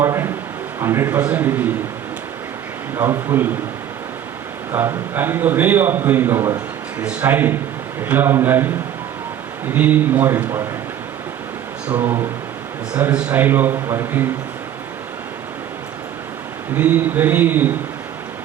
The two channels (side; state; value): left; quieter; 10.5 dB